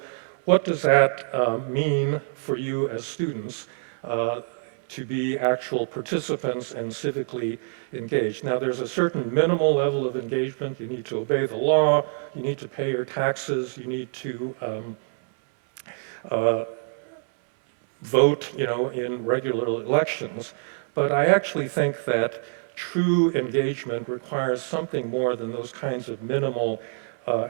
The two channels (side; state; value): left; silent; 61 dB below the other